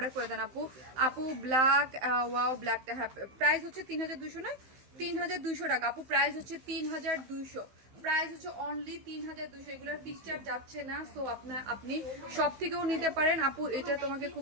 করে দেন আপু। আপু ব্ল্যাক ওয়াও ব্ল্যাকটা, হ্যাঁ প্রাইস হচ্ছে 3200 না 3200 টাকা আপু, প্রাইস হচ্ছে 3200, প্রাইস হচ্ছে অনলি 3200, এগুলোর পিকচার যাচ্ছে না। সো আপনি সব থেকেও নিতে পারেন আপু। এটা তোমাকে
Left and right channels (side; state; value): left; late; 15 ms